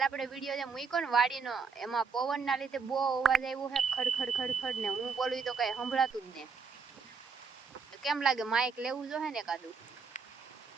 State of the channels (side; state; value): left; quieter; 5.2 dB